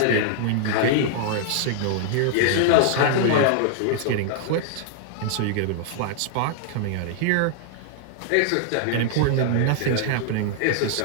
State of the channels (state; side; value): different; both; correlation -0.01